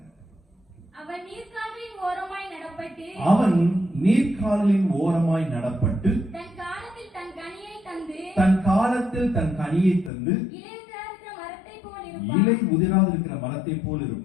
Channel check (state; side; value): drops out; right; at 10.1 s